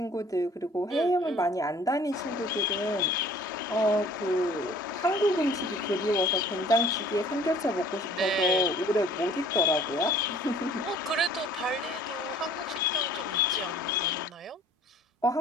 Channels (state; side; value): normal; both; correlation 0.52